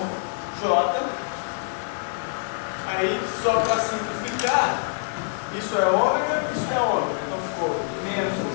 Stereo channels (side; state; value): right; silent; 62 dB below the other